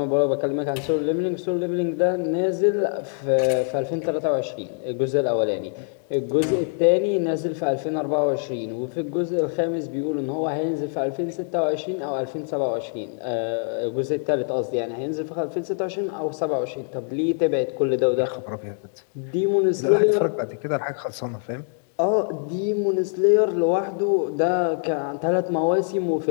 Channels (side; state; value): right; silent; 58 dB below the other